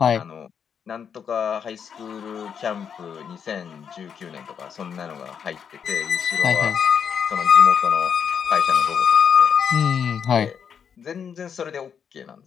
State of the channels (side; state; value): right; quieter; 7.4 dB